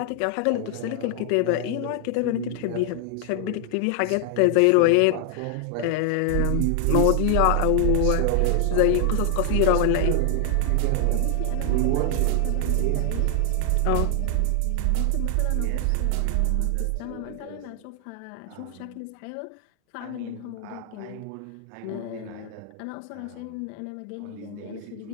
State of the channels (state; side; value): different; both; correlation 0.00